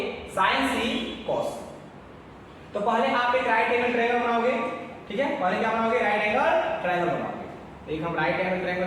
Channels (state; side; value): identical; both; correlation 1.00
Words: sine C cos। तो पहले आप एक राइट एंगल ट्रायंगल बनाओगे, ठीक है। पहले क्या बनाओगे, राइट एंगल ट्रायंगल बनाओगे। एक हम राइट एंगल ट्रायंगल